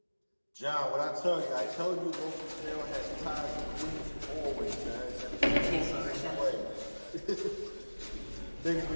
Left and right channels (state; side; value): inverted; both; correlation -1.00